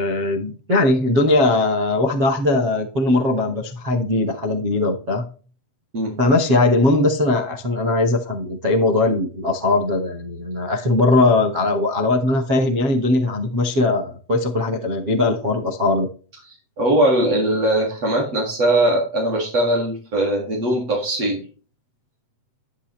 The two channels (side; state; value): left; late; 7.9 ms